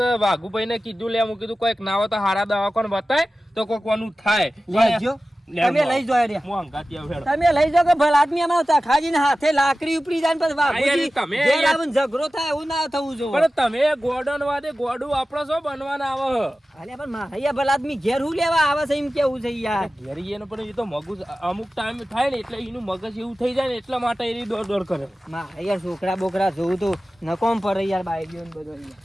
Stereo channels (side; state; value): both; normal; correlation 0.95